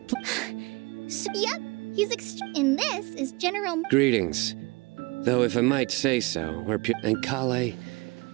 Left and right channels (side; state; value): left; quieter; 26.0 dB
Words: Yep, he's and this is General... Greetings. Though if I might say so, we're pure... And Kale,